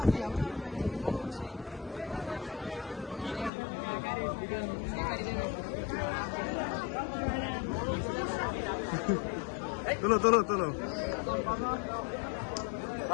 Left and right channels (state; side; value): drops out; right; at 3.5 s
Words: তোলো তোলো তোলো।